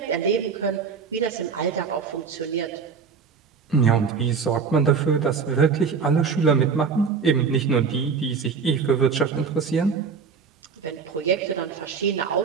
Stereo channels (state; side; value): quieter; left; 5.7 dB